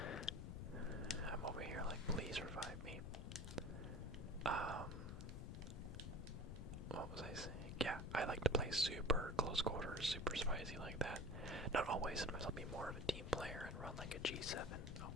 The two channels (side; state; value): left; noise; rumble, 6 dB below the sound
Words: I'm over here like, please revive me. What was I saying? Yeah, I like to play super close quarters, super spicy like that. Not always, sometimes I'll be more of a team player and run like a G7. Oh,